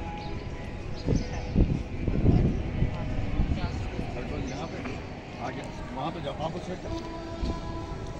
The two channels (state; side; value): identical; both; correlation 1.00